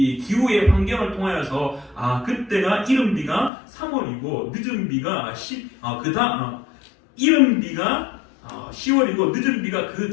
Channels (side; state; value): right; drops out; at 3.5 s